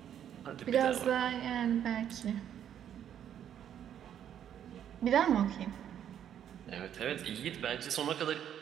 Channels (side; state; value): left; quieter; 9.8 dB